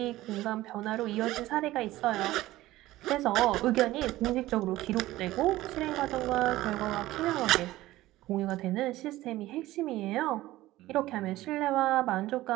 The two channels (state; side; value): quieter; left; 16.6 dB